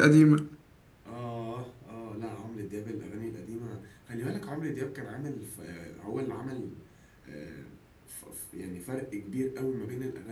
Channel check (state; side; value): identical; both; correlation 1.00